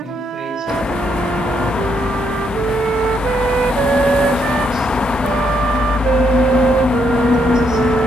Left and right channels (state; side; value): normal; both; correlation 0.75